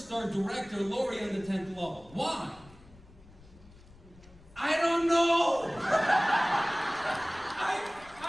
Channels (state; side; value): noise; left; rumble, 24 dB below the sound